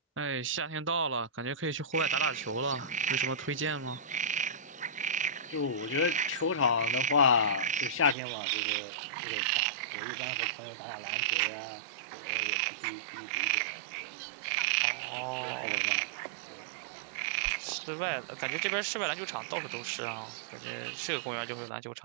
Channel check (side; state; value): left; drops out; at 8.2 s